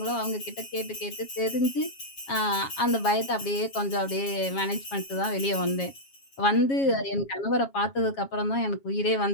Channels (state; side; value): late; right; 7.3 ms